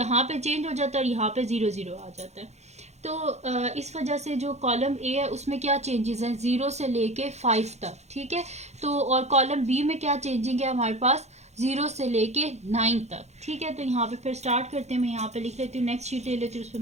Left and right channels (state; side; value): late; left; 0.32 ms